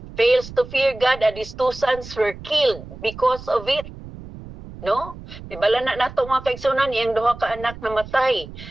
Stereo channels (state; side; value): noise; right; rumble, 15 dB below the sound